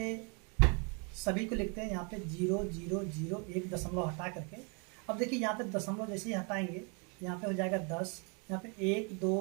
सभी को लिखते हैं, यहाँ पे 0 0 0 1 दशमलव हटा करके। अब देखिए, यहाँ पे दशमलव जैसे ही हटाएंगे यहाँ पे हो जाएगा 10, यहाँ पे 1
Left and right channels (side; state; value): left; quieter; 34.9 dB